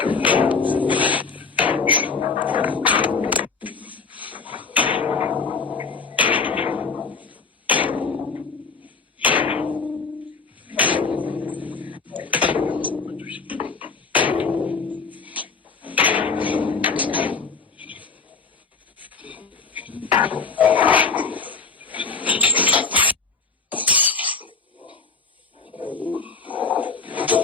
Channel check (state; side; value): quieter; right; 4.9 dB